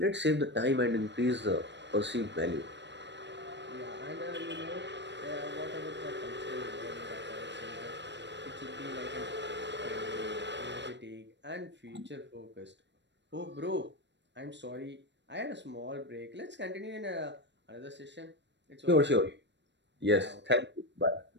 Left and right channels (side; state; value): left; late; 0.52 ms